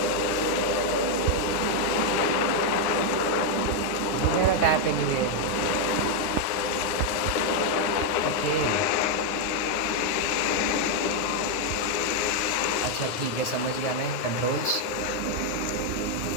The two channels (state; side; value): late; right; 9.4 ms